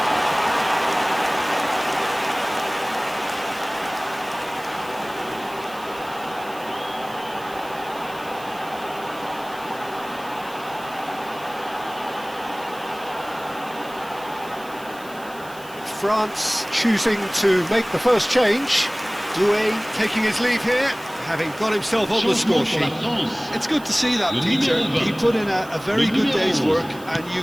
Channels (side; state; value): right; noise; hiss, 20 dB below the sound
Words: France choosing to make the first change. Doué taking his leave here, having got himself on the score sheet. It's good to see that, Peter. He put in a very good day's work, and you